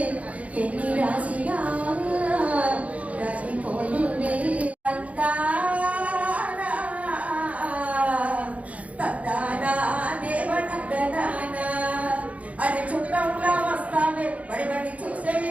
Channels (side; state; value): left; late; 0.067 ms